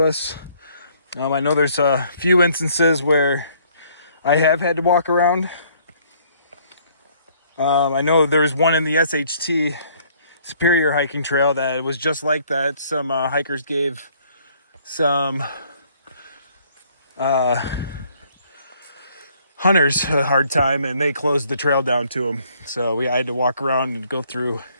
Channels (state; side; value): inverted; both; correlation -0.62